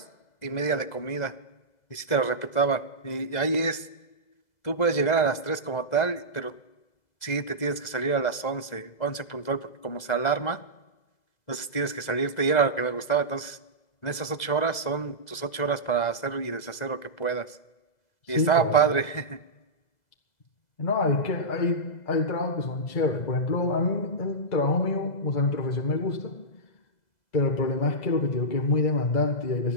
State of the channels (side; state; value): right; late; 2.0 ms